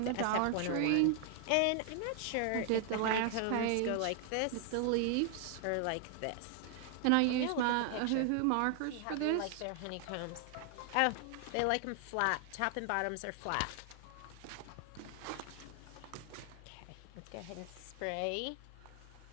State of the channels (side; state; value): both; different; correlation 0.00